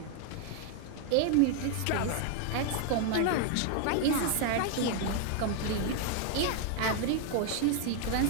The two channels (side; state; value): both; different; correlation 0.01